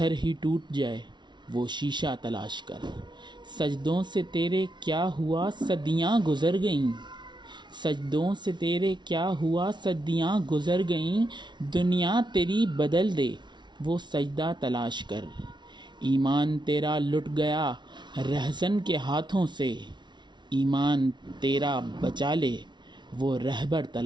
ہی ٹوٹ جائے وہ شیشہ تلاش کر۔ سجدوں سے تیرے کیا ہوا صدیاں گزر گئیں، سجدوں سے تیرے کیا ہوا صدیاں گزر گئیں، دنیا تیری بدل دے وہ سجدہ تلاش کر۔ ایمان تیرا لٹ گیا رہزن کے ہاتھوں سے، ایمان تیرا بچا لے وہ رہبر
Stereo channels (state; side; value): late; left; 0.22 ms